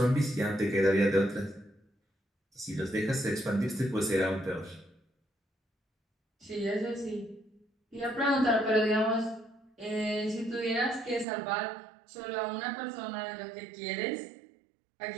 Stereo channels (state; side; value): drops out; left; at 11.2 s